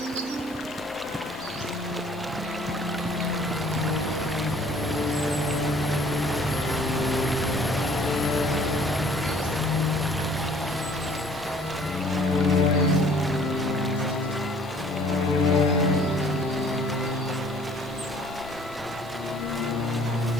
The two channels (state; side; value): normal; both; correlation 0.55